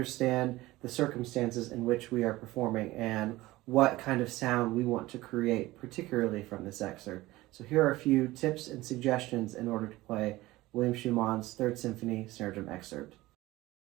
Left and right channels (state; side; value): quieter; left; 18.4 dB